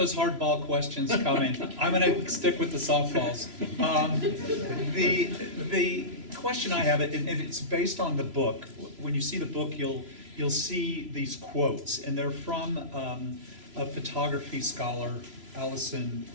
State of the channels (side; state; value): left; late; 3.0 ms